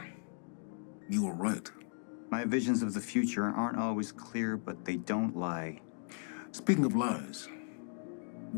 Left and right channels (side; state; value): right; silent; 53 dB below the other